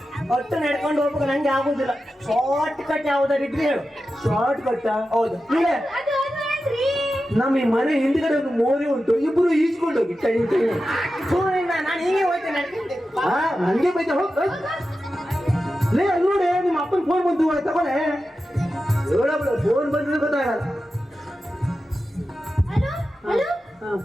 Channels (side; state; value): both; normal; correlation 0.92